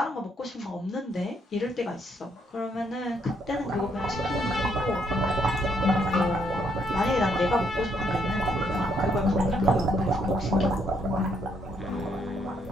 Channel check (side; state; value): both; normal; correlation 0.72